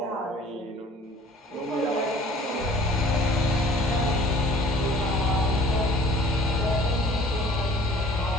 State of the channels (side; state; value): both; normal; correlation 0.51